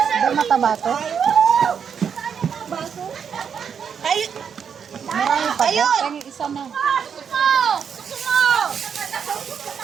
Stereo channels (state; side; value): quieter; left; 7.2 dB